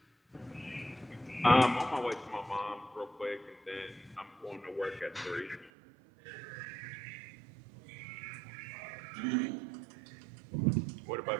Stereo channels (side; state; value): left; drops out; at 5.7 s